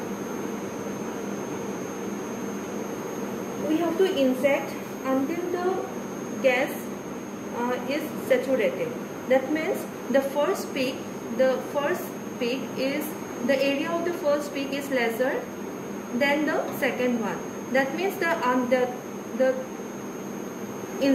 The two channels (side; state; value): both; identical; correlation 1.00